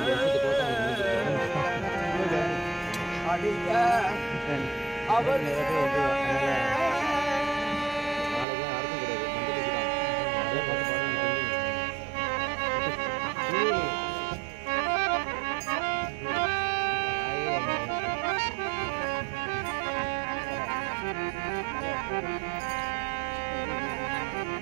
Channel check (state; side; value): drops out; left; at 8.5 s